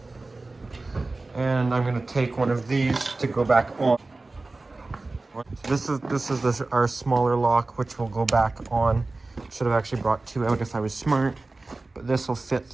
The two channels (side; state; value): left; quieter; 3.3 dB